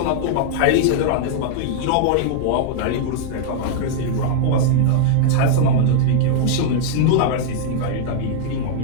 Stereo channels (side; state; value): both; different; correlation -0.01